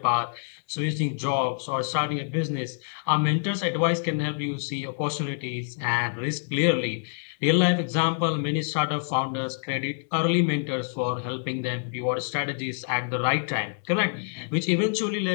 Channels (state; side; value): silent; right; digital silence